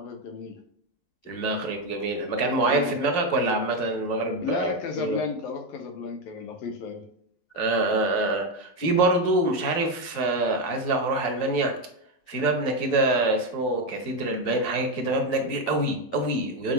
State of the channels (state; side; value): late; right; 11 ms